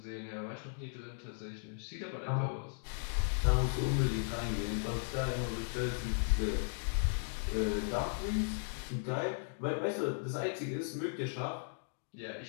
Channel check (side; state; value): right; silent; digital silence